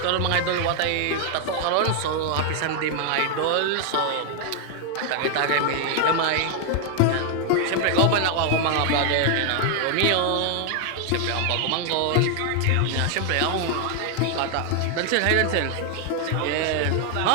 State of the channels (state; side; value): different; both; correlation 0.00